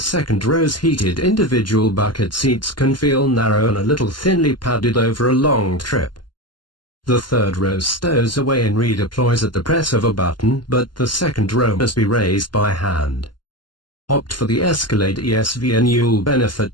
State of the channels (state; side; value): late; right; 0.71 ms